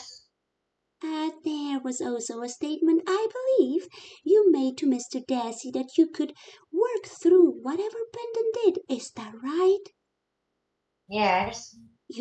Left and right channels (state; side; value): identical; both; correlation 1.00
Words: There was also a statement, I believe, you made to Mr. Dassey that you could work through whatever Brendan did. Is that right? Yes.